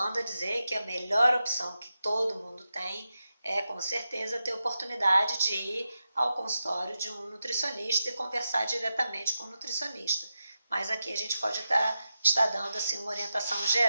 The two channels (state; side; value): inverted; both; correlation -0.90